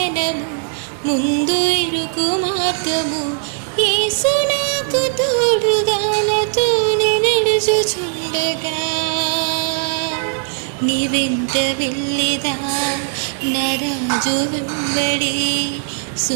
ముందు ఇరుకు మార్గము యేసు నాకు తోడుగా నాతోనే నడుచుచుండగా నీ వెంట వెళ్ళిదా నా రాజు వెంబడి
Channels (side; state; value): left; silent; 61 dB below the other